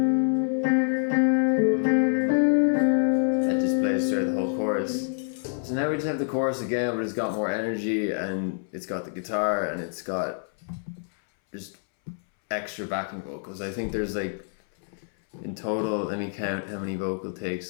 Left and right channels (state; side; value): silent; right; 60 dB below the other